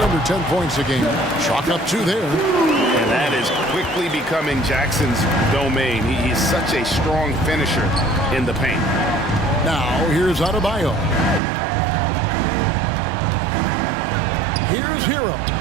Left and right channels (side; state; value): left; drops out; at 11.4 s